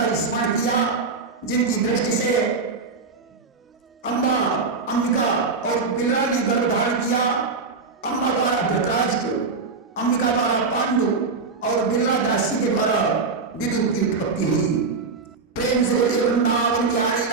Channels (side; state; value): left; quieter; 4.4 dB